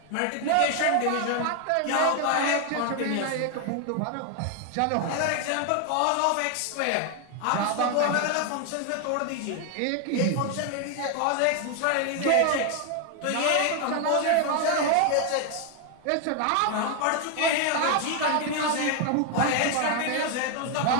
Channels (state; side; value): different; both; correlation 0.01